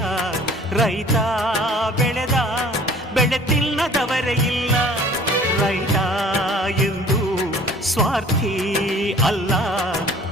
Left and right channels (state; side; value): normal; both; correlation 0.50